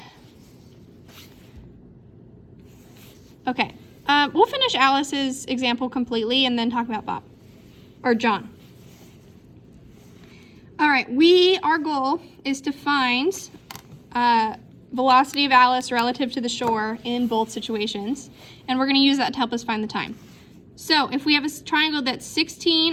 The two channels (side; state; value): both; identical; correlation 1.00